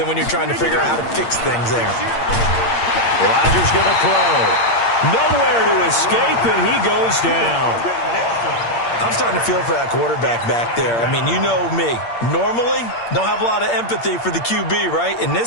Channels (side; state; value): right; late; 8.6 ms